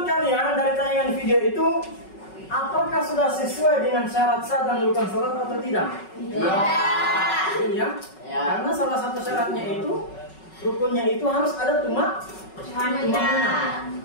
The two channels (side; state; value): right; late; 5.4 ms